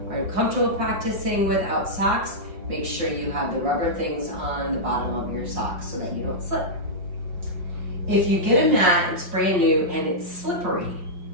are uncomfortable practicing without socks, make sure you have the rubber things on the bottom of your socks so that you don't slip. If you get a mat, it's brand new and it's slippery,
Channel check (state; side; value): late; left; 5.6 ms